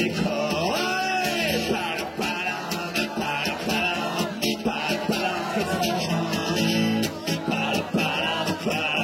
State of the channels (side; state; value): both; identical; correlation 1.00